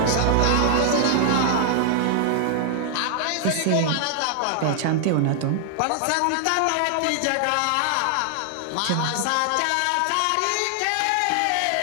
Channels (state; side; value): different; both; correlation 0.00